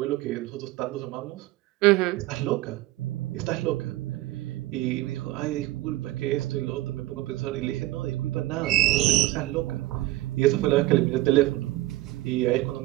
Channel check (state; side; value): quieter; left; 17.0 dB